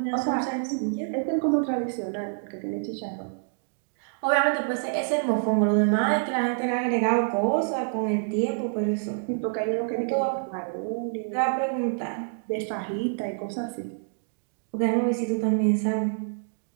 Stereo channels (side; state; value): left; silent; digital silence